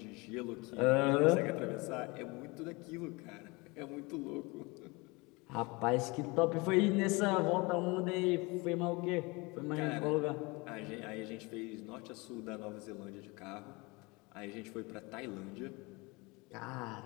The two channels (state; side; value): quieter; right; 25.9 dB